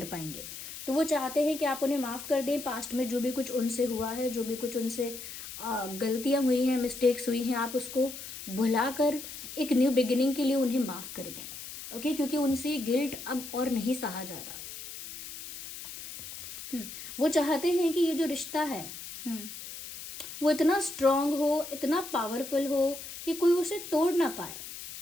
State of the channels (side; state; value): left; noise; hiss, 11 dB below the sound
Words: पाएंगे। तो वो चाहते हैं कि आप उन्हें माफ़ कर दें। पास्ट में जो भी कुछ उनसे हुआ है, जो भी कुछ उनसे गलतियाँ हुई हैं, मिस्टेक्स हुई हैं, आप उसको भुलाकर एक न्यू बिगिनिंग के लिए उन्हें माफ़ कर दें, ओके, क्योंकि उनसे गिल्ट अब और नहीं सहा जाता। वो चाहते हैं कि ये जो रिश्ता है वो इतना स्ट्रांग हो, इतना पावरफुल हो कि कोई उसे तोड़ ना पाए।